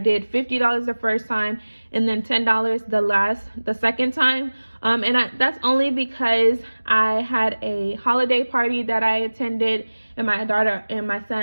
$50 the first time and then $10 the second time. That's only because I had a holiday party that I attended, and my daughter and my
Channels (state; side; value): inverted; both; correlation -1.00